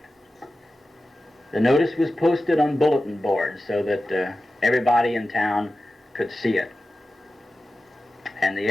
The notice was posted on bulletin boards so that everybody in town could see it. And the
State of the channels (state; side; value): normal; both; correlation 0.94